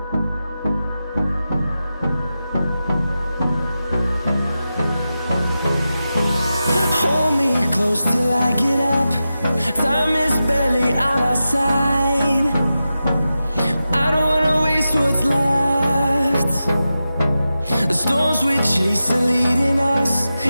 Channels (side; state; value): both; inverted; correlation -0.92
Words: Hold me close till I get up. Time is barely on our side. I don't wanna waste what's left. The storms we chase are leading us,